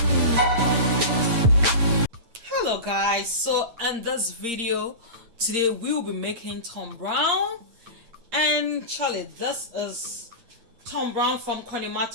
Hello guys, so in this video today we will be making Tombrown, and Charlie, this is Tombrown from Conniemart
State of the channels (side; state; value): left; late; 8.6 ms